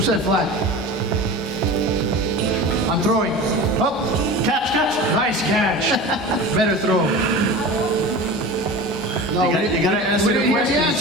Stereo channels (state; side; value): normal; both; correlation 0.33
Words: said flat? I'm throwing. Up. Catch. Nice catch. Better throw. No, You gotta answer the hear the questions.